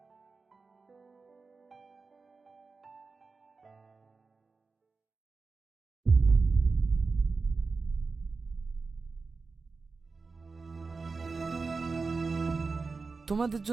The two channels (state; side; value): quieter; left; 4.3 dB